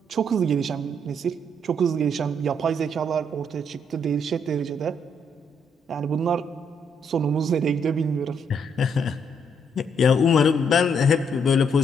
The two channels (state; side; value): normal; both; correlation 0.72